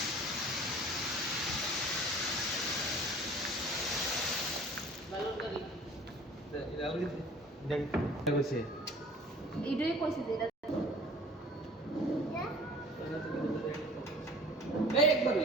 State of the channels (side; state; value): both; normal; correlation 0.47